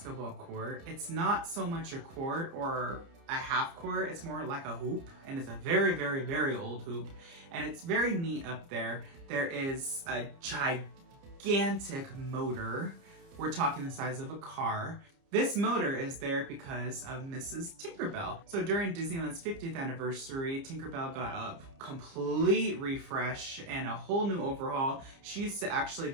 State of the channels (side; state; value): left; late; 30 ms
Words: court. It's not so much a court or a half court, it's more like a hoop, and it's a very, very, very old hoop, and it's very neat up there. There is a gigantic motor. We're talking the size of a car. This motor is there because of Mrs. Tinkerbell. So during Disneyland's 50th anniversary, Tinkerbell got a complete refresh and a whole new overhaul. She used to actually